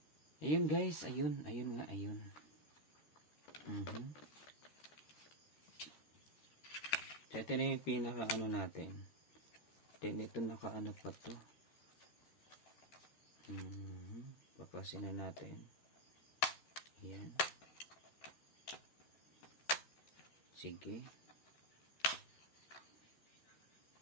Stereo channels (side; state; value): right; late; 13 ms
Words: Ayun guys, ayun nga, ayun. So, ito na yung pinaka ano natin. Then ito naka ano pa to. Papasin na natin. Yan. Sige.